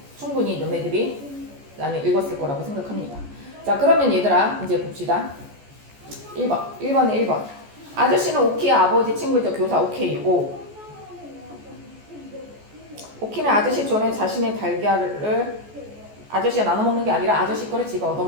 충분히 너네들이 나는 읽었을 거라고 생각합니다. 자, 그러면 얘들아 이제 봅시다. 1번에 1번. 아저씨는 오키의 아버지 친구이죠. 교사 오케이. 오. 오키는 아저씨 전에 자신의 달걀을 아저씨가 나눠 먹는 게 아니라 아저씨 거를 지가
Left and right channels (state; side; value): late; left; 14 ms